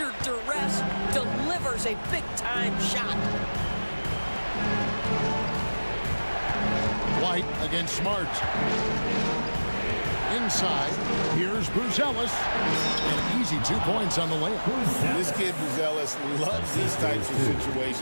duress delivers a big-time shot. White against Smart. Inside, here's Buzelis. An easy 2 points on the layup. This kid, Buzelis, loves these types of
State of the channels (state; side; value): inverted; both; correlation -1.00